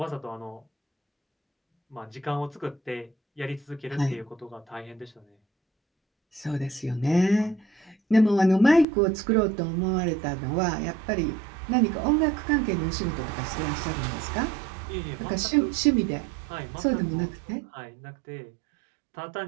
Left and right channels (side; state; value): left; drops out; at 8.8 s